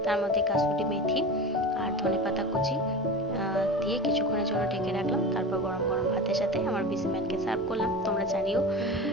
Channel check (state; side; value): normal; both; correlation 0.29